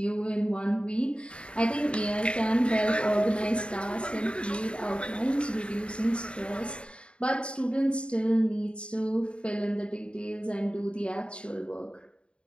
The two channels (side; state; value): right; late; 0.056 ms